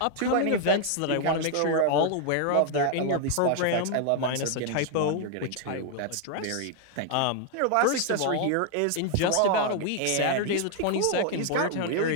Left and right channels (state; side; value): different; both; correlation 0.00